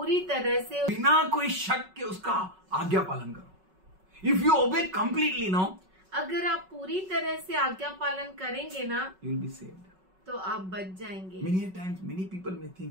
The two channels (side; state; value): left; late; 5.4 ms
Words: तरह से बिना कोई शक के उसका आज्ञा पालन करो. If you obey completely now, अगर आप पूरी तरह से आज्ञा पालन करेंगे ना you will be saved. तो आप बच जाएंगे। Many a times, many people may